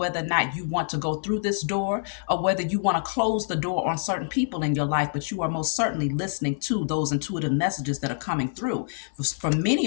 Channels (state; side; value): silent; right; 56 dB below the other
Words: or not you want to go through this door or whether you want to close the door on certain people in your life. But you are most certainly listening to those intuitive messages that are coming through. For